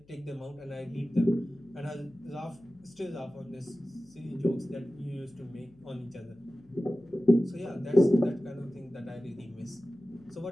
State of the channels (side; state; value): left; noise; hum, 28 dB below the sound